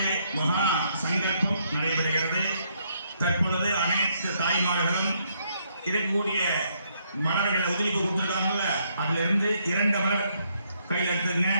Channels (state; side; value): inverted; both; correlation -0.73